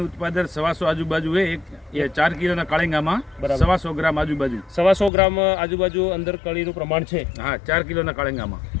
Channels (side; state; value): right; drops out; at 5.1 s